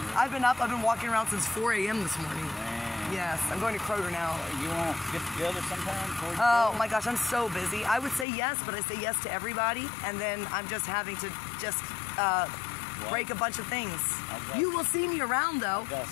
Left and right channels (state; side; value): drops out; right; at 8.2 s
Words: I've been walking around since 4 a.m. this morning. Yes, I'm going to Kroger now. You want to get together sometime? Oh my gosh, I'm so busy. I would say yes, but I say yes to everybody, and then I'm just having to break a bunch of things. You will see me around though. I got